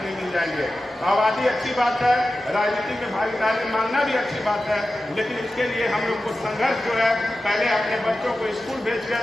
मिल जाएंगे। आबादी अच्छी बात है, राजनीति में भागीदारी मांगना भी अच्छी बात है, लेकिन इसके लिए हम लोग को संघर्ष जो है पहले अपने बच्चों को स्कूल भेजकर,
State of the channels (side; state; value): both; normal; correlation 0.93